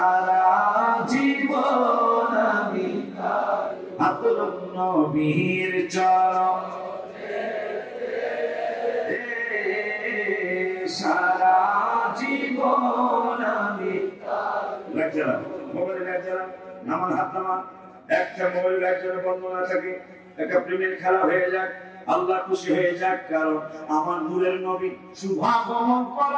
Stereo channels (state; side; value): identical; both; correlation 1.00